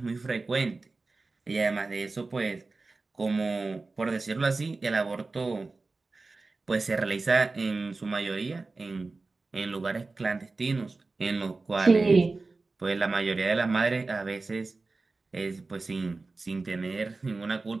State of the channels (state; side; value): quieter; left; 3.7 dB